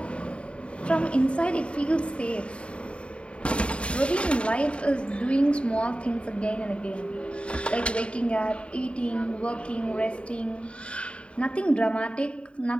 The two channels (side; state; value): right; late; 0.058 ms